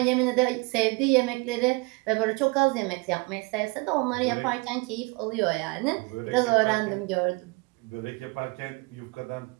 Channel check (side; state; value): left; quieter; 27.1 dB